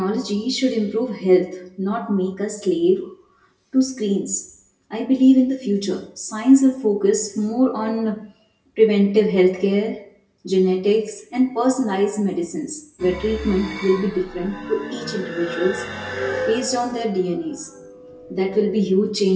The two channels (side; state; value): both; identical; correlation 1.00